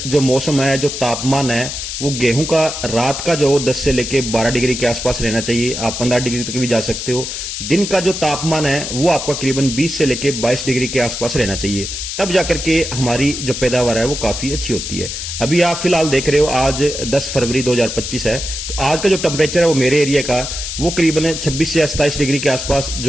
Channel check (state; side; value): noise; left; hiss, 6 dB below the sound